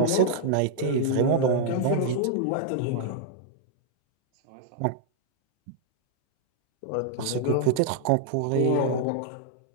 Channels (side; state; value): both; different; correlation -0.01